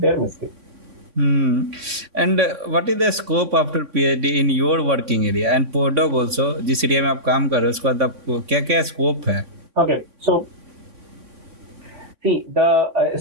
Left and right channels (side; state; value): left; late; 3.6 ms